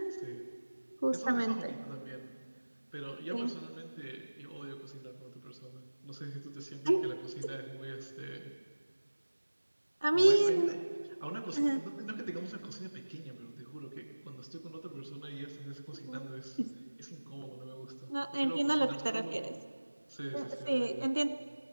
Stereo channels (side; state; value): both; inverted; correlation -1.00